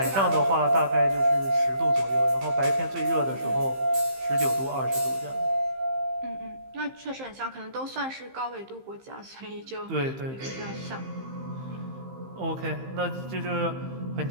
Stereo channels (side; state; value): left; late; 15 ms